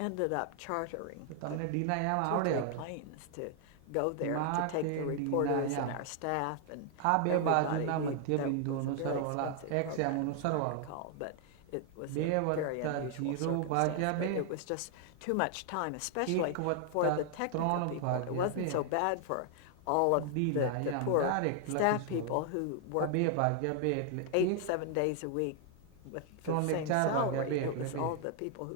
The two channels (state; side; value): different; both; correlation 0.00